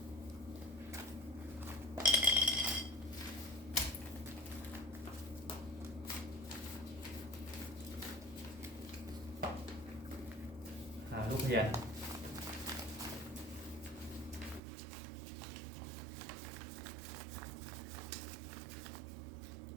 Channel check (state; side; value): drops out; left; at 14.6 s